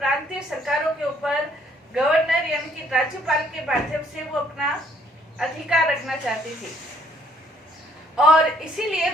सरकारों के ऊपर गवर्नर यानी कि राज्यपाल के माध्यम से वो अपना अधिकार रखना चाहती थी और इसीलिए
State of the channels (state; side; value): normal; both; correlation 0.65